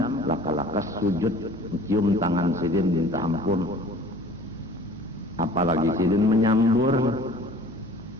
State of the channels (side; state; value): both; normal; correlation 0.47